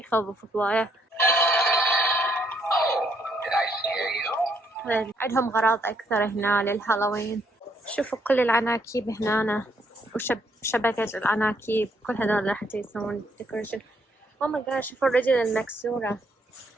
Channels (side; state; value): both; normal; correlation 0.71